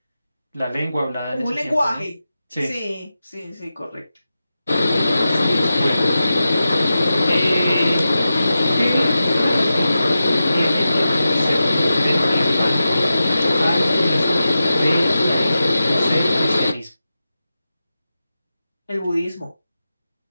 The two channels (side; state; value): both; inverted; correlation -0.92